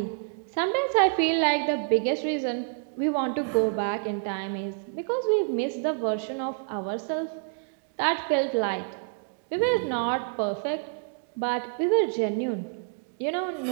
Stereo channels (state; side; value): silent; left; 60 dB below the other